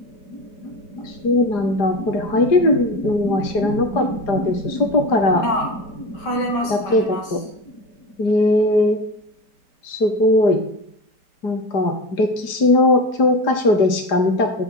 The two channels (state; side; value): late; right; 4.9 ms